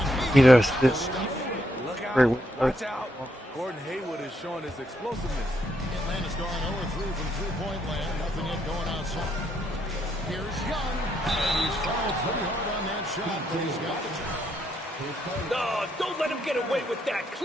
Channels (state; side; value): normal; both; correlation 0.76